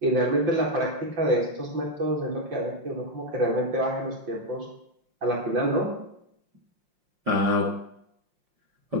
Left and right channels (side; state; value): left; late; 5.6 ms